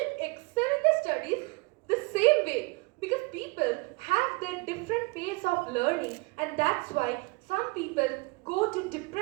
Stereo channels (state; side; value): quieter; left; 27.9 dB